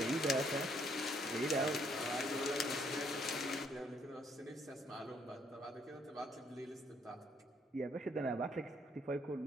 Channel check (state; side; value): normal; both; correlation 0.68